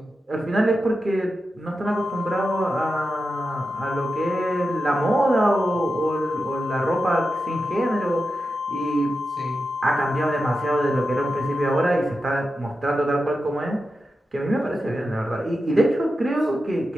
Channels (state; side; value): normal; both; correlation 0.90